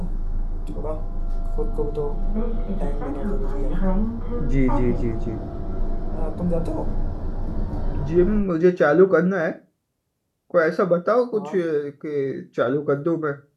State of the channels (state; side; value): identical; both; correlation 1.00